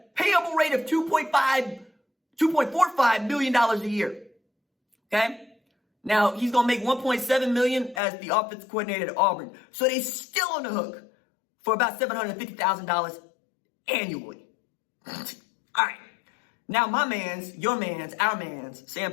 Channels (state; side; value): drops out; right; at 8.0 s